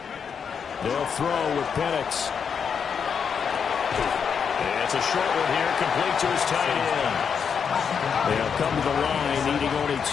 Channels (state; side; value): quieter; right; 6.8 dB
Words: They'll throw with Penix. It's a short one here, complete to his tight end. They'll come to the line, needing only